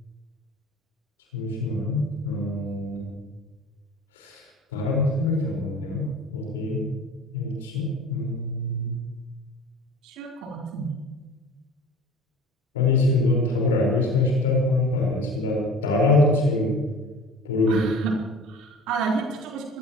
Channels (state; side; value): normal; both; correlation 0.41